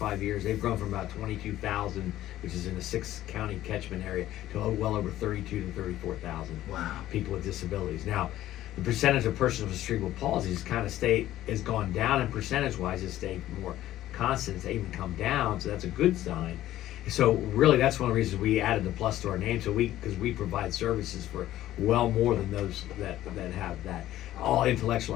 years, they've grown from about 22,000, which is in the 6-county catchment area, to well over 32 to 34,000 people with disabilities. Now, the percentage of persons with cerebral palsy has gone down, and percentage-wise, it's stayed more constant. It's even come down, so that's a good sign. So really, that's one of the reasons we added the plus to our name. So because we provide services for well more than those that have that. All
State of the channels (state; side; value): quieter; right; 13.9 dB